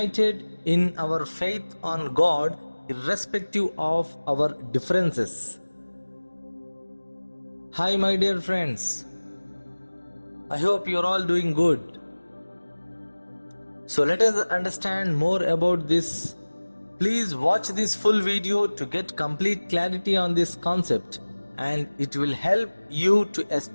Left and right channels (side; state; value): both; inverted; correlation -1.00